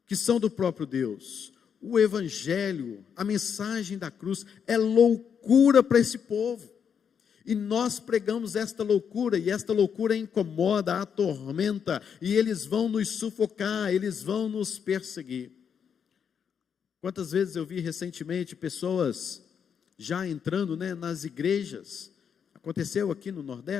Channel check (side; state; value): right; quieter; 7.4 dB